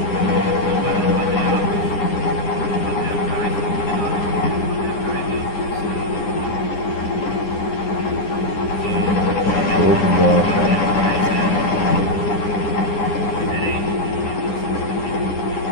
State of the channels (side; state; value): right; late; 9.8 ms